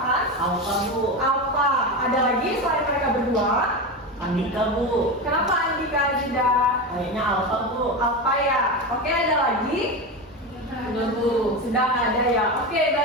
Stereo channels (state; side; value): normal; both; correlation 0.20